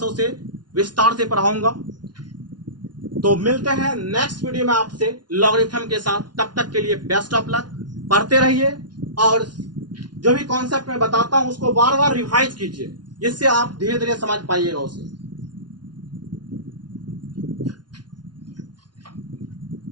उसे विस्तार से पढ़ाऊंगा। तो मिलते हैं नेक्स्ट वीडियो में आपसे लॉगरिथम के साथ। तब तक के लिए बेस्ट ऑफ लक, पढ़ते रहिए और जो भी कॉन्सेप्ट मैं बताता हूं उसको बार बार रिवाइज कीजिए, जिससे आप धीरे धीरे समझ पाइएगा उसे।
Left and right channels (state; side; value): late; left; 0.70 ms